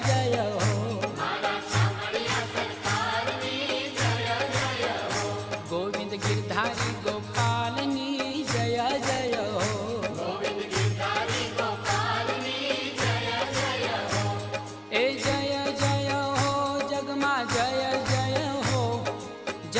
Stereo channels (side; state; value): both; identical; correlation 1.00